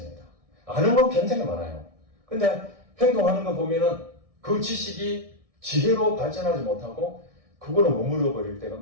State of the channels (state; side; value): late; left; 1.6 ms